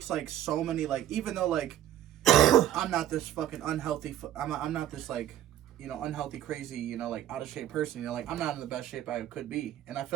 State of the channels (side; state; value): left; quieter; 12.1 dB